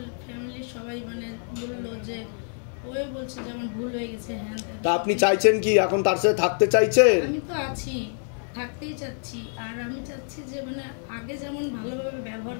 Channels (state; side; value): silent; right; 57 dB below the other